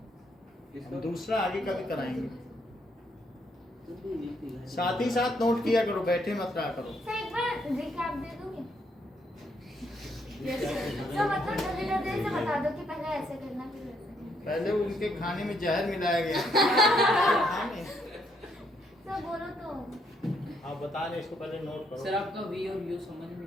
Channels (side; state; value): both; normal; correlation 0.73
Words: दूसरा आगे कभी कराएंगे। साथ ही साथ नोट किया करो, बैठे मत रहा करो। सर एक बार रिकैप दे दोगे? सर मतलब जल्दी जल्दी से बता दो कि पहले ऐसे करना फिर वैसे करना। पहले उनके खाने में जहर मिलाया गया। सर बोलो तो आप बता रहे इसको पहले नोट करो। सर आपका वी और यू समझ में